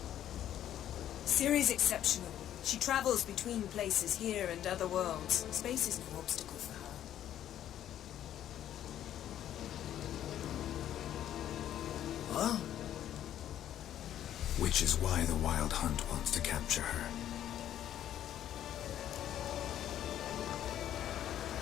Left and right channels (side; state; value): right; quieter; 11.3 dB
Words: Ciri's exceptional. She travels between places here and other worlds. Space is no obstacle for her. Huh? Which is why the Wild Hunt wants to capture her.